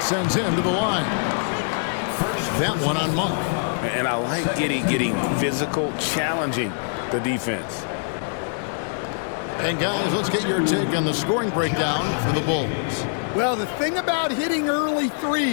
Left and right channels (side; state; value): right; silent; 63 dB below the other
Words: him to the line. That one on Monk. And I like Giddey getting physical, challenging the defense. And guys, let's get your take on the scoring breakdown for the Bulls. Well, the thing about hitting early